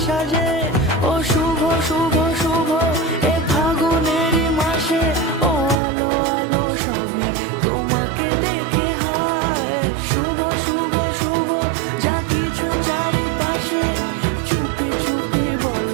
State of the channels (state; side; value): drops out; left; at 5.8 s